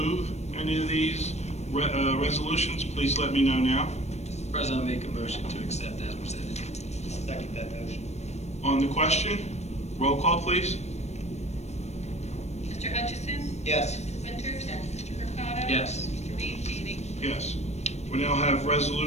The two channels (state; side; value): late; right; 0.32 ms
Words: any of these resolutions, please let me know now. Mr. President, I make a motion to accept as presented. Second that motion. On the question, roll call, please. Mr. Hutchison? Yes. Mrs. Winters? Mr. Mercado? Yes. Mr. Ianni? Yes. We now have